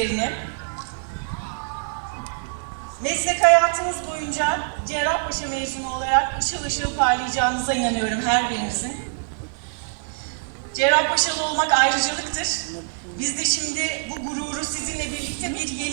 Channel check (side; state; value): left; silent; 55 dB below the other